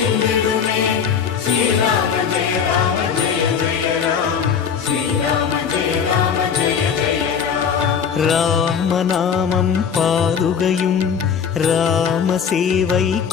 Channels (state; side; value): quieter; right; 7.0 dB